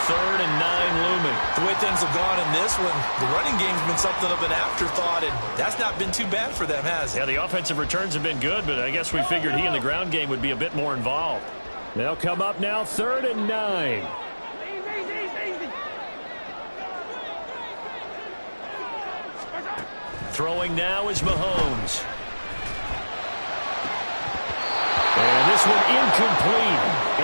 3rd and 9 looming. The way things have gone in this one, the running game's been something of an afterthought, and that's not been too bad for them, has it? Yeah, the offensive returns have been good, but I guess we figured he in the ground game would be a bit more involved. They'll come up now 3rd and 9. Throwing now is Mahomes. And this one incomplete.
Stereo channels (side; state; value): both; inverted; correlation -1.00